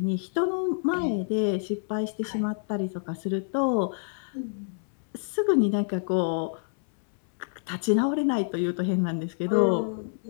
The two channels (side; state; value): right; silent; 60 dB below the other